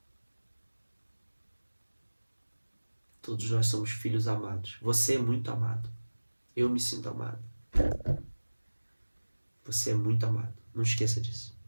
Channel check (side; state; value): both; inverted; correlation -1.00